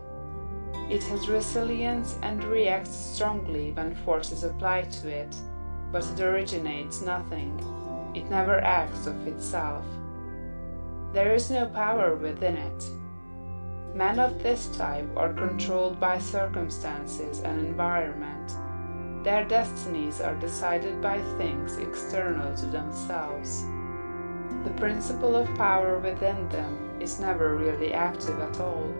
It has resilience and reacts strongly when force is applied to it, but it originates nothing. It never acts of itself. There is no power within it. Men of this type are controlled by circumstances and environment. Their destinies are decided by things external to themselves. The principle of power within them is never really active at all.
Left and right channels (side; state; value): both; inverted; correlation -1.00